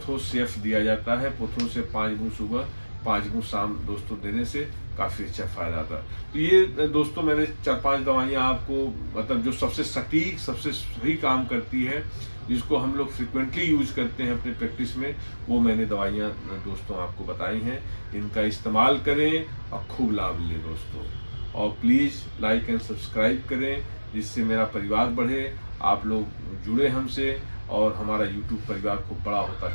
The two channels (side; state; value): both; inverted; correlation -1.00